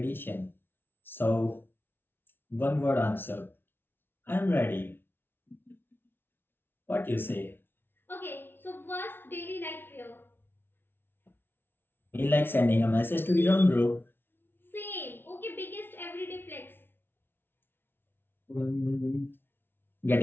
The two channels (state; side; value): late; right; 0.11 ms